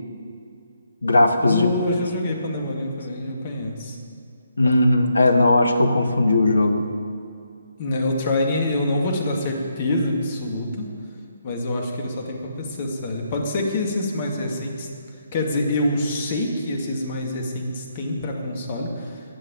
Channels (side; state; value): both; inverted; correlation -0.78